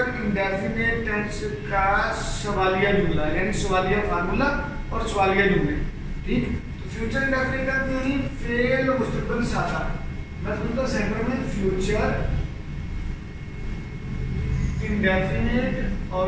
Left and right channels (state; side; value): identical; both; correlation 1.00